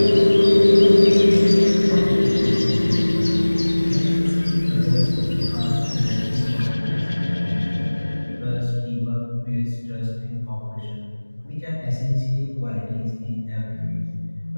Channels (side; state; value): both; inverted; correlation -1.00